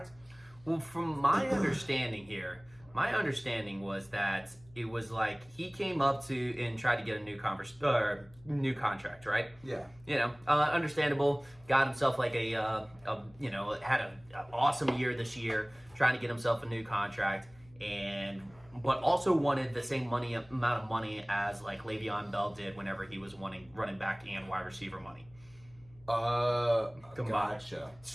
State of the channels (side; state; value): left; noise; hum, 26 dB below the sound